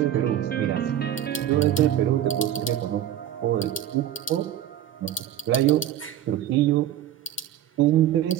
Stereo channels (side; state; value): left; quieter; 11.3 dB